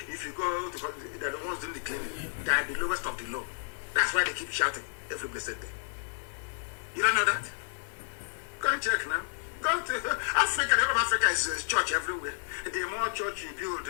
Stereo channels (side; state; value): right; silent; digital silence